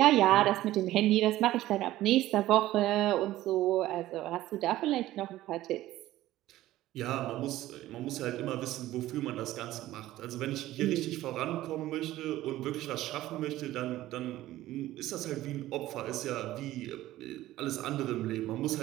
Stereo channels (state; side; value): quieter; left; 15.3 dB